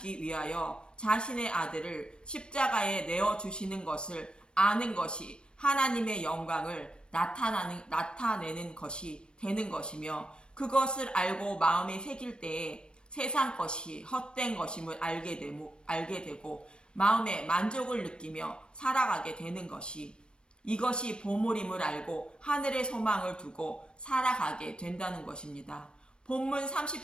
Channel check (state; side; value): late; right; 0.054 ms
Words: 위하여 자신의 아들을 십자가에 내어주시는 것을 아는 것이 하나님의 영광을 나타내는 것이 되는 것이며, 그것을 알고 마음에 새길 때에 세상 것이 헛된 것임을 알게 되고 마음에 만족을 느끼며 살아가게 되는 것이, 이것이 보물임을 알고 하늘의 소망을 두고 살아가게 된다는 것입니다. 본문